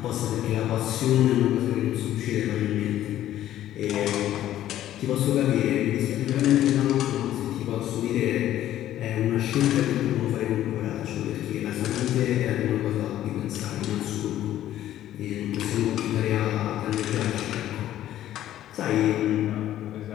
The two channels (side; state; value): right; quieter; 12.7 dB